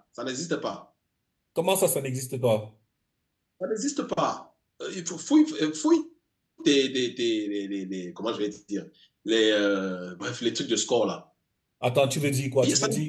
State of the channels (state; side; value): identical; both; correlation 1.00